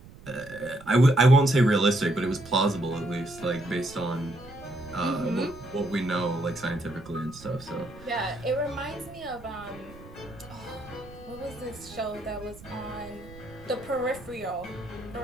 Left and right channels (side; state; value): right; noise; rumble, 19 dB below the sound